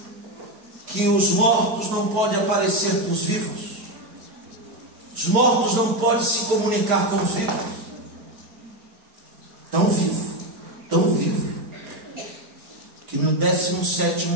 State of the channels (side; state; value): left; late; 4.9 ms